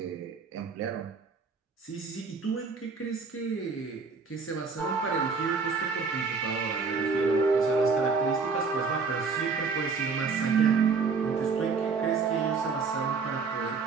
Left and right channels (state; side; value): quieter; left; 4.9 dB